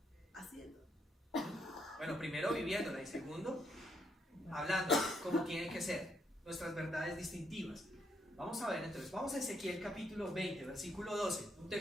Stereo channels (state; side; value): normal; both; correlation 0.75